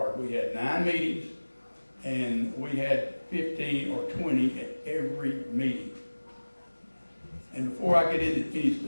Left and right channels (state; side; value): inverted; both; correlation -1.00